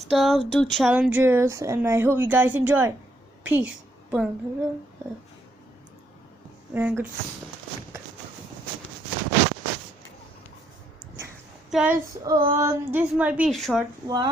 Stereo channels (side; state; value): both; normal; correlation 0.73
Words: do challenges, and I hope you guys enjoy. Peace. And good. Guys, this might be a short